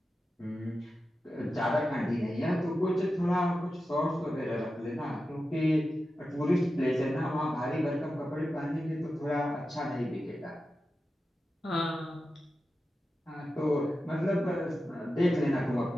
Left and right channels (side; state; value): both; normal; correlation 0.92